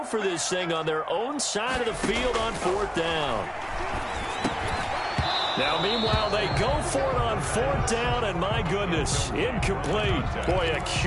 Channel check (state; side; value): identical; both; correlation 1.00